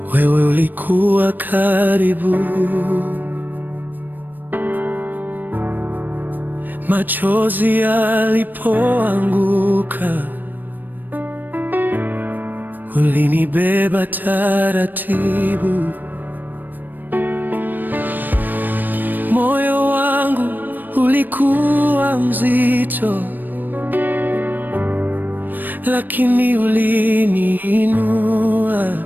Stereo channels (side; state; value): left; late; 0.090 ms